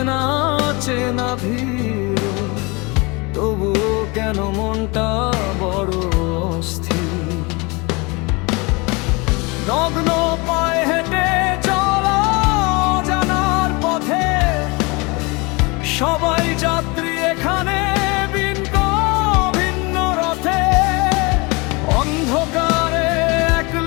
চেনা ভিড়, তবুও কেন মনটা বড় অস্থির। নগ্ন পায়ে হেঁটে চলা জানার পথে, সবাই যাত্রী এখানে ভিন্ন ভিন্ন রথে। অন্ধকারে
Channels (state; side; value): quieter; right; 27.2 dB